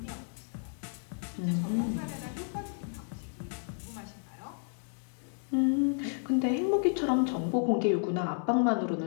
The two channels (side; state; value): right; silent; 56 dB below the other